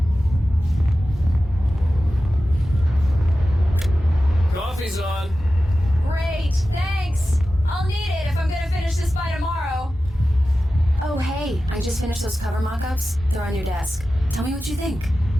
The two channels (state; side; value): normal; both; correlation 0.94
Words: Coffee's on. Great, thanks. I'll need it if I'm gonna finish this by tomorrow. Oh, hey, I just finished those cover mock-ups. They're on your desk. Tell me what you think.